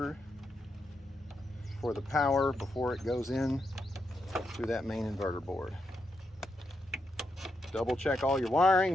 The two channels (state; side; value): normal; both; correlation 0.83